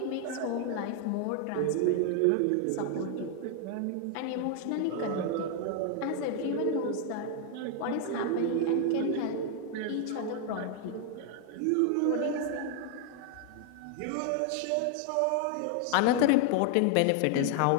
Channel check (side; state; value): both; different; correlation 0.00